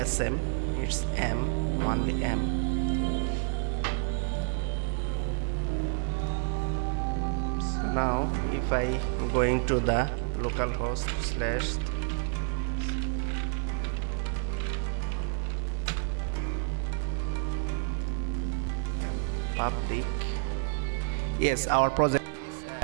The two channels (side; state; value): left; silent; digital silence